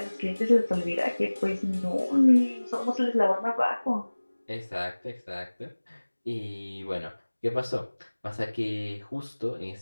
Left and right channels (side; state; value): both; inverted; correlation -1.00